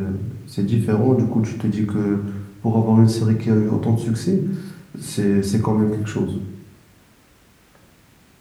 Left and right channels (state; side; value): identical; both; correlation 1.00